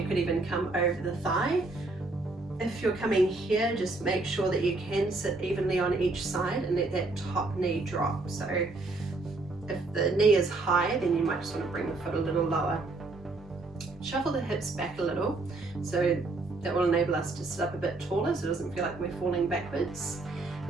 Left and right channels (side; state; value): left; quieter; 3.3 dB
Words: could even come over the thigh. If you're coming here, just make sure that you can sit evenly on each side and let that top knee drop. So if the knee is high, then you might just want to bring the foot a little lower. Shuffle the hips back a little so That will enable us to sit up a bit taller so it doesn't feel like we're falling backwards.